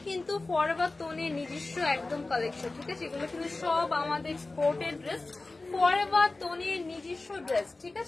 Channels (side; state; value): right; quieter; 3.2 dB